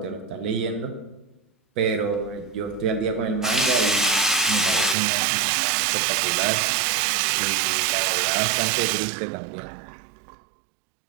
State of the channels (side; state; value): left; drops out; at 5.0 s